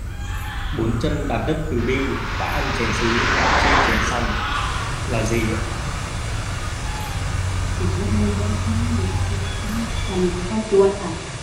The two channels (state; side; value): identical; both; correlation 1.00